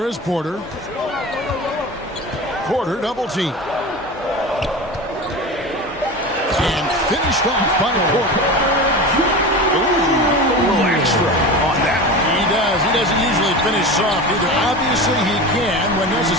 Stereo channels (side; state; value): both; normal; correlation 0.29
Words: is Porter. Porter double team. And finished off by Porter. Ooh, a little extra on that one. He does. He doesn't usually finish soft either. Obviously he can when